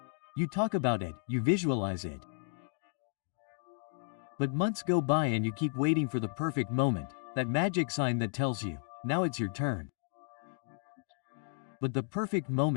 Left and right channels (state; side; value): quieter; right; 34.5 dB